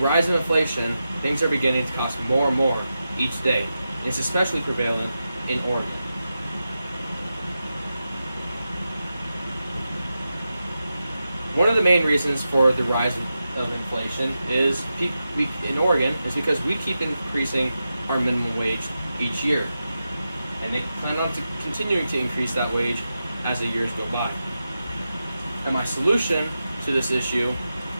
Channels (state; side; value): inverted; both; correlation -0.90